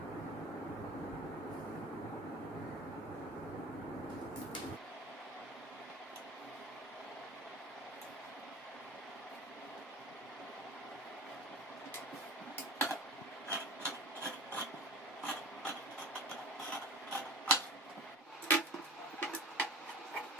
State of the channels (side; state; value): both; normal; correlation 0.35